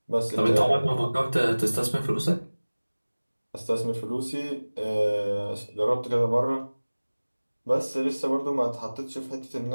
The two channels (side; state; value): both; inverted; correlation -1.00